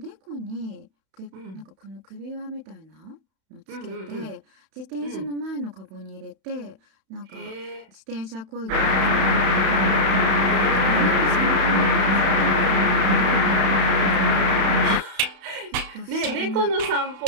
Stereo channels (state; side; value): late; left; 31 ms